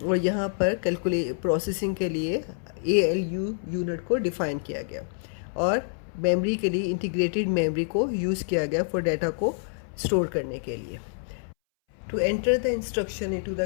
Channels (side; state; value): right; silent; 60 dB below the other